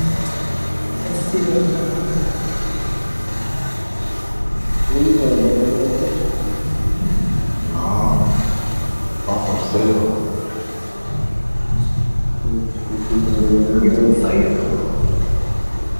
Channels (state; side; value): inverted; both; correlation -1.00